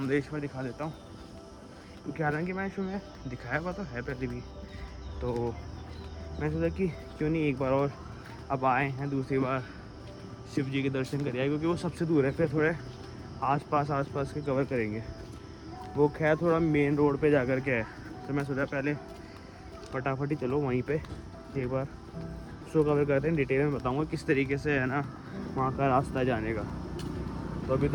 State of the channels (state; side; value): identical; both; correlation 1.00